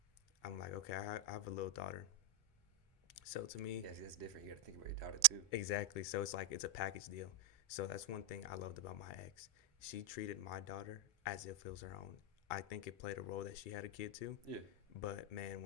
I'm like, okay, I have a little daughter. So to me, Yeah, see, that's different. You got to think about your daughter too. exactly. So it's like it's a package deal. So that's one thing I loved about my ex. She treated my daughter as if it was her own. I think it played a role that she had a kid too. Yeah. But man,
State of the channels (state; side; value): normal; both; correlation 0.01